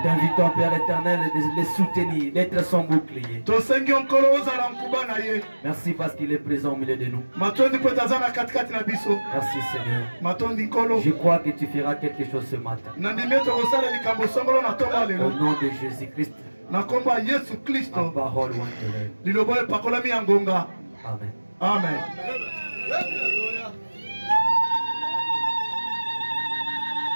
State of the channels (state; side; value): inverted; both; correlation -1.00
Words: t'invitons, Père éternel, de les soutenir, d'être son bouclier. Merci parce qu'il est présent au milieu de nous. Merci, Seigneur. Je crois que tu feras quelque chose ce matin. Au nom de Jésus-Christ. La parole Amen. Amen.